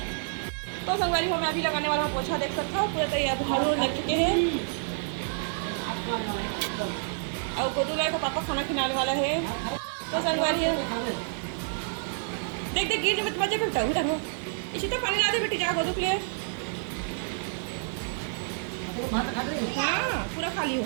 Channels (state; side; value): silent; left; digital silence